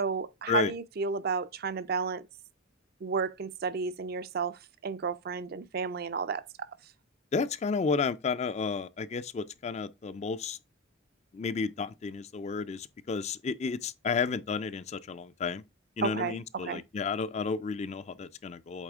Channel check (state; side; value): normal; both; correlation 0.05